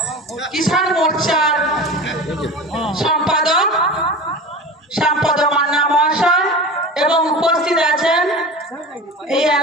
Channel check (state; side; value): normal; both; correlation 0.32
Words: কিষাণ মোর্চার সম্পাদক শ্যামপদ মান্না মহাশয় এবং উপস্থিত আছেন এই